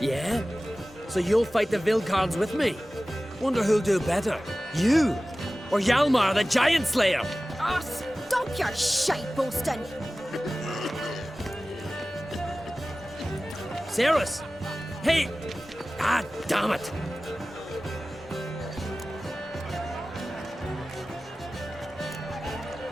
Yeah? So you'll fight the Vilcards with me? Wonder who'll do better, you or Hjalmar, the Giant Slayer? Oh, stop your shite boasting. Ceres! Hey! Ah, damn it!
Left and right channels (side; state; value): both; normal; correlation 0.97